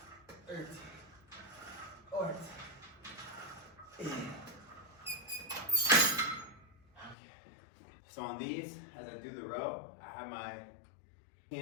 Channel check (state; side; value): drops out; right; at 7.2 s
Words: 13, 14, 15. So on these, as I do the row, I have my